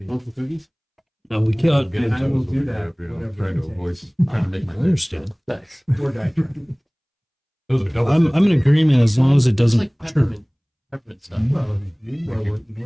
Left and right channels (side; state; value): both; identical; correlation 1.00